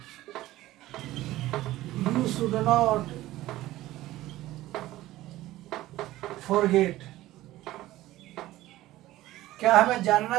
यू शुड नॉट फॉरगेट। क्या हमें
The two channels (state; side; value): quieter; left; 16.1 dB